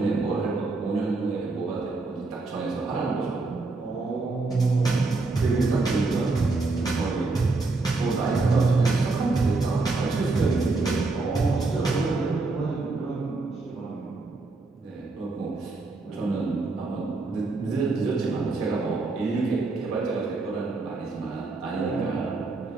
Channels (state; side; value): quieter; left; 3.5 dB